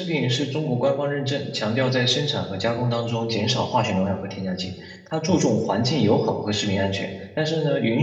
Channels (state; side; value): identical; both; correlation 1.00